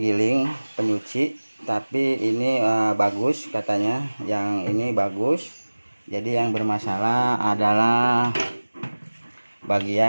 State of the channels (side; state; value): both; inverted; correlation -1.00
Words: penyuci, tapi ini bagus katanya, yang ini bagus. Jadi yang bermasalah adalah